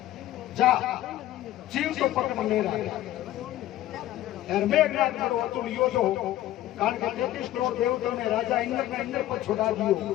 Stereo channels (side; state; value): right; quieter; 14.2 dB